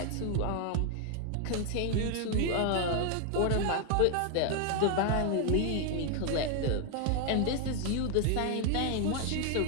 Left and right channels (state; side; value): different; both; correlation 0.00